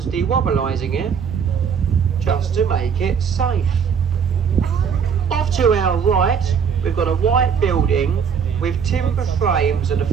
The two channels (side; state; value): left; quieter; 6.9 dB